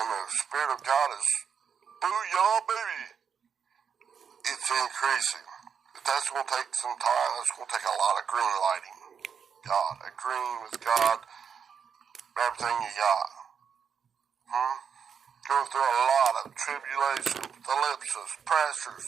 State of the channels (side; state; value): left; quieter; 6.9 dB